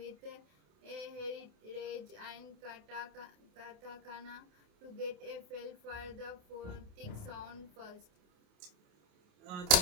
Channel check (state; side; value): late; left; 28 ms